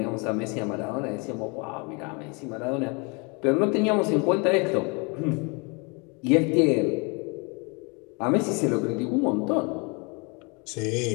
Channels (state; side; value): quieter; right; 31.3 dB